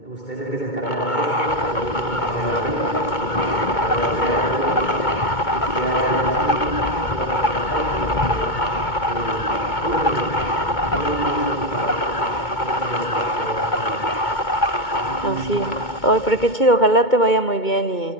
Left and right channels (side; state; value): right; late; 2.2 ms